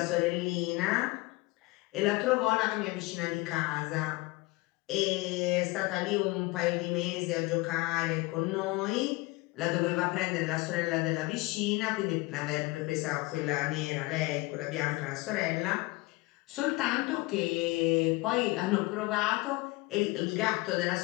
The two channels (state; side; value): quieter; right; 22.4 dB